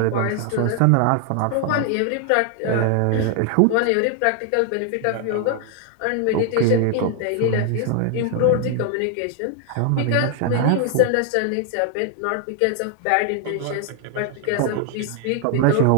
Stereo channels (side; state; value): both; different; correlation 0.00